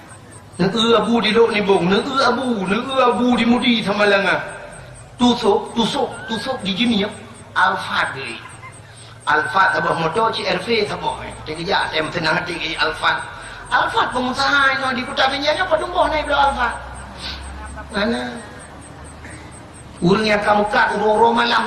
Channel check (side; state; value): both; identical; correlation 1.00